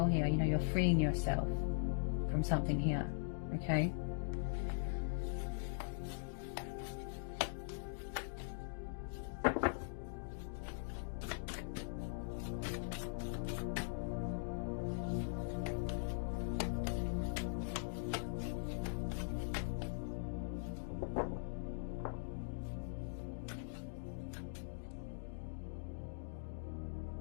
here. You know, you're freeing yourself from something here, okay?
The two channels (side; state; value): right; silent; digital silence